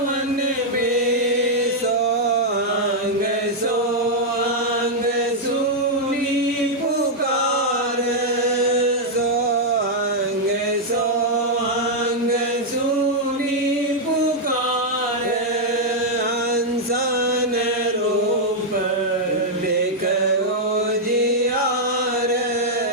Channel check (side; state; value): both; normal; correlation -0.03